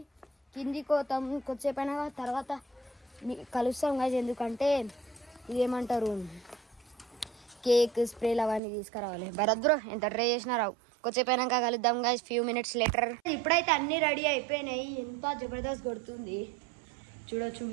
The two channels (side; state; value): left; drops out; at 8.6 s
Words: కిందికి పోతాం కొద్దిసేపు అయినా తర్వాత కలుస్తాం గాయస్. ఎందుకంటే ఇదేమంటారు కేక్ స్ప్రేలు అవన్నీ తీసుకురావాలి. భరత్ బ్రో ఎంత ట్రై చేసినా రావు. కొద్దిసేపు అయినాక కలుద్దాం గాయస్, ఫ్యూ మినిట్స్ లేటర్. ఇప్పుడైతే అన్నీ రెడీ అయిపోయినాయి. ఎంత జబర్దస్త్ కొడుతుంది చూడొచ్చు